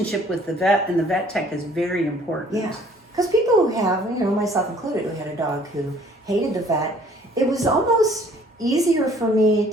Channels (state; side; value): normal; both; correlation 0.57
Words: with the vet and the vet tech is very important. Yeah, because people who have, myself included, who had a dog who hated the vet, it was almost easier for me